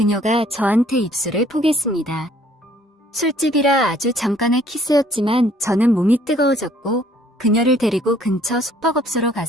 저한테 입술을 포겠습니다. 술집이라 아주 잠깐의 키스였지만 저는 몸이 뜨거워졌고 그녀를 데리고 근처 숙박업소로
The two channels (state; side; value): normal; both; correlation 0.60